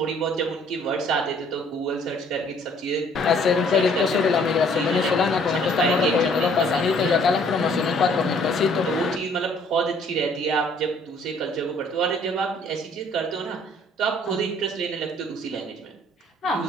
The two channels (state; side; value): normal; both; correlation 0.59